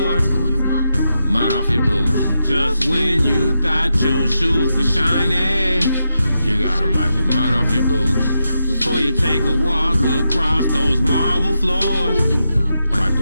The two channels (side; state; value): both; inverted; correlation -0.86